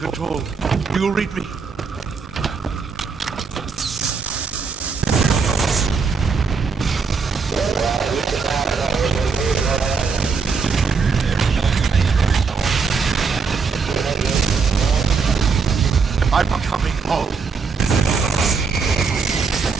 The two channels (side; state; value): left; quieter; 5.1 dB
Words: do you read me? I'm coming home.